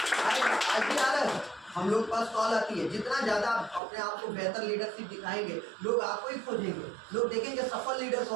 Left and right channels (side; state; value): left; drops out; at 3.8 s